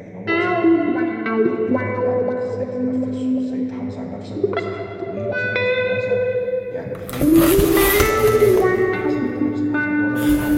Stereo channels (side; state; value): both; identical; correlation 1.00